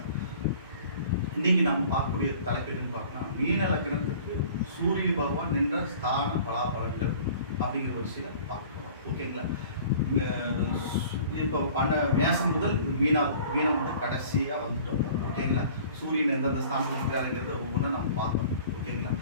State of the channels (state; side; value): inverted; both; correlation -0.47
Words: இன்னைக்கு நம்ம பார்க்கக்கூடிய தலைப்பு எதுன்னு பார்த்தோம்னா, மீன லக்னத்துக்கு சூரிய பகவான் நின்ற ஸ்தான பலாபலன்கள் அப்படிங்கிற ஒரு சில பார்க்கலாம். ஓகேங்களா? இப்போ மேசம் முதல் மீனம் வந்து கடைசியாக வந்துட்டோம். ஓகேங்களா? சூரியன் எந்தெந்த ஸ்தானத்தில் இருக்கிறாருங்கிறத ஒவ்வொன்றா நம்ம பார்க்கணும். ஓகேங்களா?